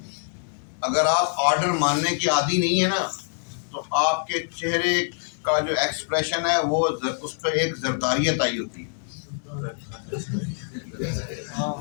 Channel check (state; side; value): silent; right; digital silence